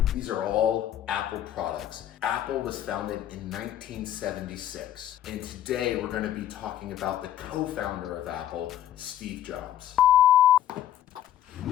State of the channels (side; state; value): right; quieter; 11.7 dB